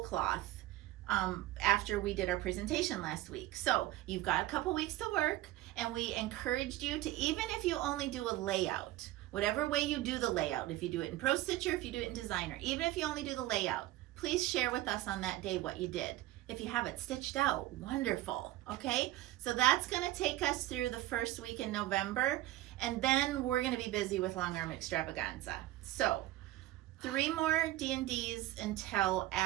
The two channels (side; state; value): left; quieter; 16.1 dB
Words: cloth after we did our presentation last week. So you've got a couple weeks to work, and we encouraged you to, even if you only do a layout, whatever way you do the layout, if you do it in Pro Stitcher, if you do it in Designer, even if you only do the layout, please share with us on that day what you did. If you have it stitched out, wonderful. Okay, so that's going to take us through the first week in November, and then we're going to be busy with Long Arm Extravaganza. So 3 more D&Ds until